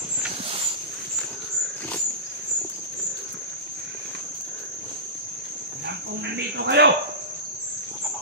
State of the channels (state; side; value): normal; both; correlation -0.19